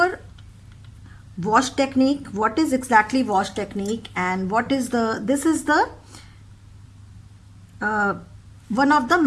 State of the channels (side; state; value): both; identical; correlation 1.00